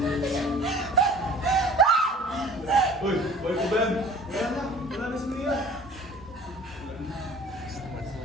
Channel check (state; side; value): normal; both; correlation 0.47